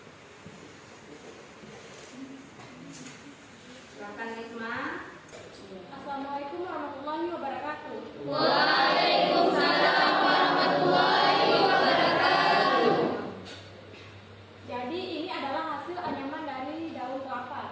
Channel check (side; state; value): both; identical; correlation 1.00